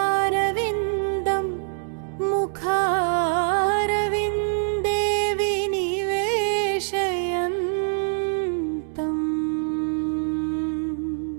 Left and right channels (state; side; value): silent; left; digital silence